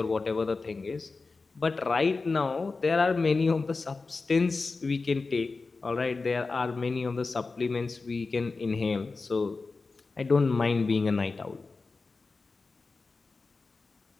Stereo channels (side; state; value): right; quieter; 4.0 dB